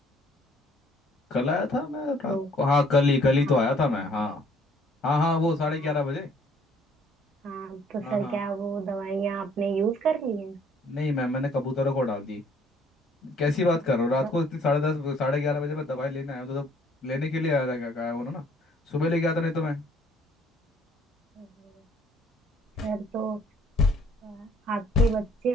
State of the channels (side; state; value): both; normal; correlation 0.60